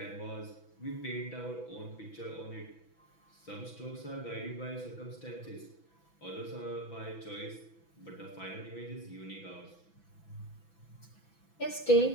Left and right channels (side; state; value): right; late; 6.0 ms